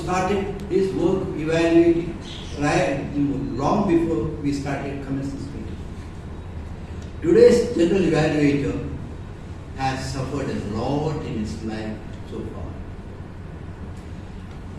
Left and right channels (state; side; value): identical; both; correlation 1.00